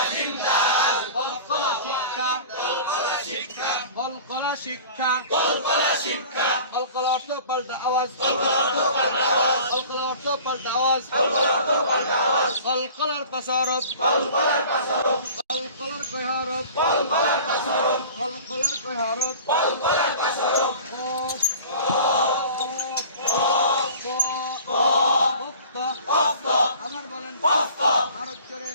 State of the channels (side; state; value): both; inverted; correlation -0.43